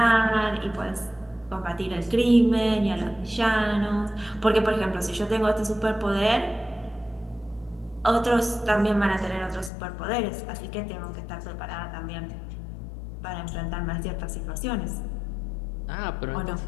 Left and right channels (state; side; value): drops out; right; at 9.7 s